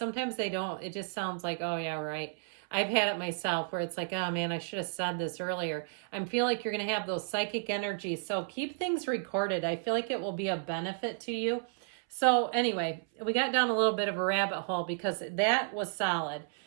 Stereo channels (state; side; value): silent; left; 56 dB below the other